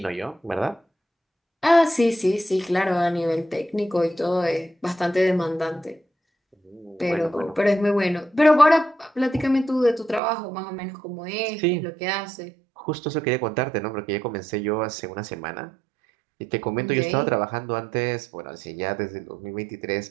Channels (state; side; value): drops out; left; at 10.2 s